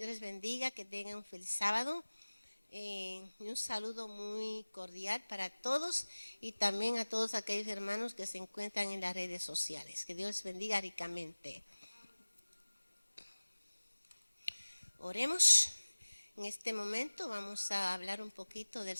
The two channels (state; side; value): inverted; both; correlation -1.00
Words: les bendiga, que tengan un feliz sábado. Y un saludo muy cordial para todos y también a todos aquellos hermanos que se encuentran en las redes sociales. Que Dios les bendiga ricamente. Oremos. En este momento vamos a hablar un poquito del